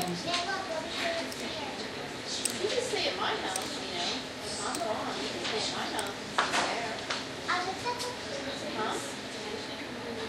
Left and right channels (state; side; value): identical; both; correlation 1.00